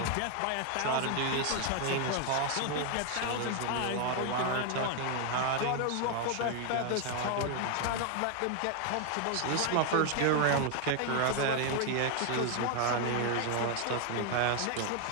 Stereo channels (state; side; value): different; both; correlation 0.00